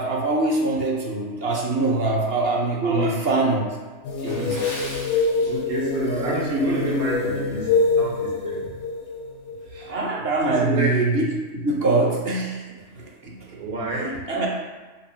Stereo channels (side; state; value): right; late; 2.8 ms